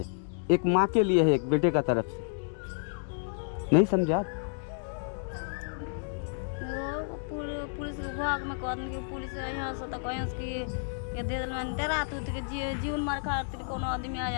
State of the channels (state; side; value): silent; right; digital silence